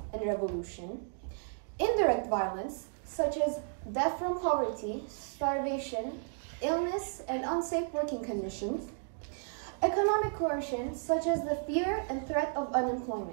and revolution; indirect violence, such as death from poverty, starvation, illness, and unsafe working conditions; economic coercion, such as the fear and threat of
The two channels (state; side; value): silent; left; digital silence